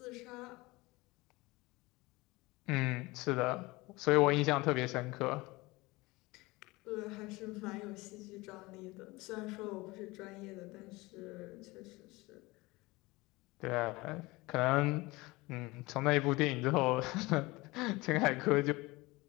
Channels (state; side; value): quieter; right; 22.0 dB